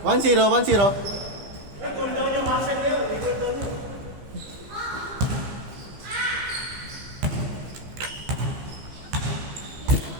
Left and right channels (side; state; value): left; late; 15 ms